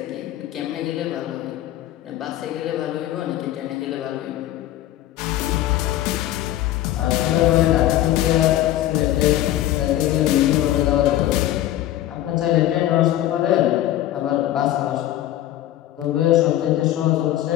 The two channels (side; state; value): right; quieter; 13.4 dB